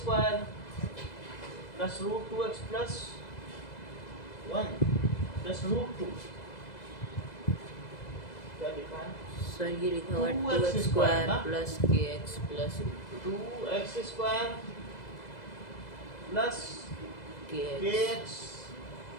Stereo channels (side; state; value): right; late; 2.0 ms